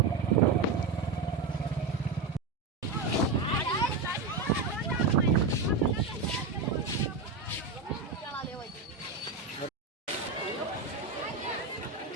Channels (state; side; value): quieter; left; 4.0 dB